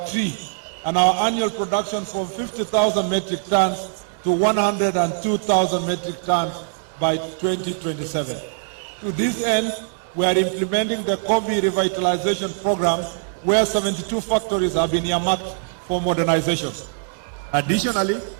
tree, and our annual production from 50,000 metric tons to 102,000 metric tons by 2027. To this end, we are implementing the coffee revitalization program, where 72 factories have been earmarked for modernization. Additionally,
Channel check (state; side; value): silent; left; digital silence